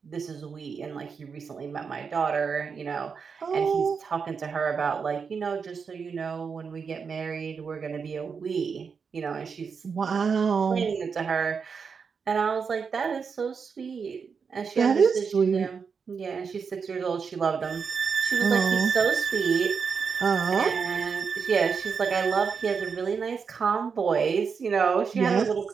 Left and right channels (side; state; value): left; quieter; 5.8 dB